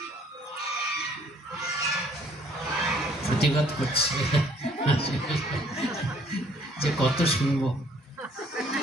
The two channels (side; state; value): both; normal; correlation 0.61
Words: প্রতিবাদ করছে যে কত শুনবো।